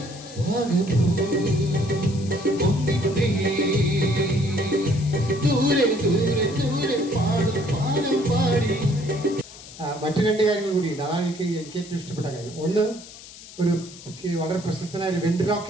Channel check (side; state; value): left; noise; hiss, 17 dB below the sound